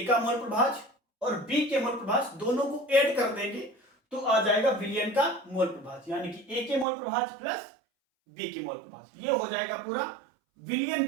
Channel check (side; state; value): left; drops out; at 6.9 s